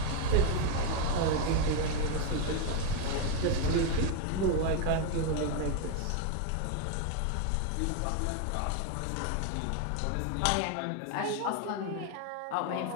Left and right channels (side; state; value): both; different; correlation 0.01